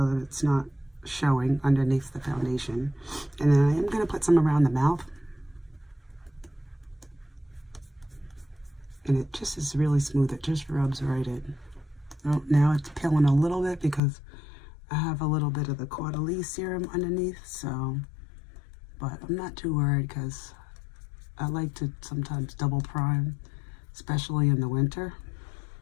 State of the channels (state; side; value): drops out; right; at 14.0 s